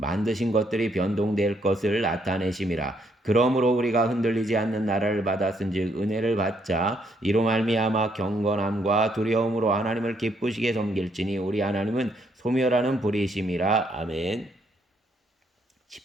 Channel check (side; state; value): both; normal; correlation 0.72